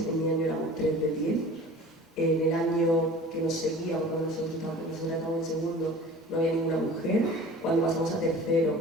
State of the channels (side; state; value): both; normal; correlation 0.42